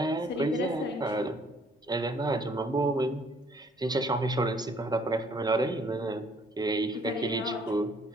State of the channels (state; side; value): normal; both; correlation 0.61